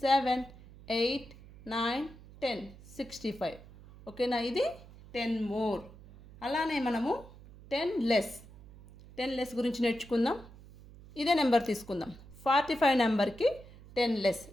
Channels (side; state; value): right; noise; hum, 20 dB below the sound